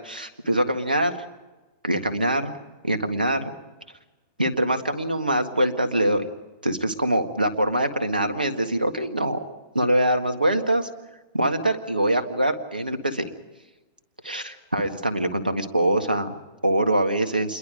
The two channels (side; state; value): both; inverted; correlation -0.76